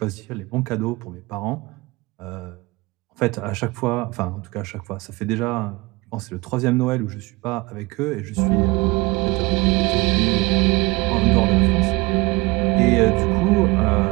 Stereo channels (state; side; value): quieter; left; 23.6 dB